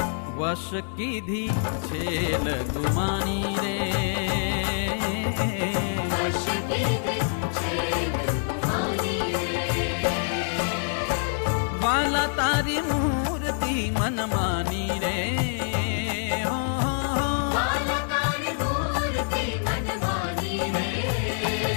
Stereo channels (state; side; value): silent; right; digital silence